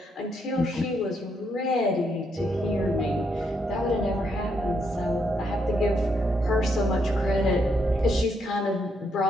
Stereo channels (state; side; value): normal; both; correlation 0.77